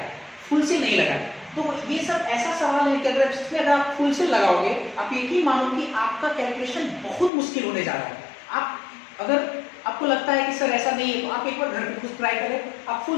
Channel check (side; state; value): right; drops out; at 7.3 s